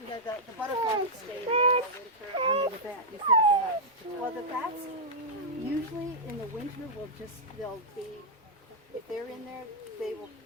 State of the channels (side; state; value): both; normal; correlation -0.07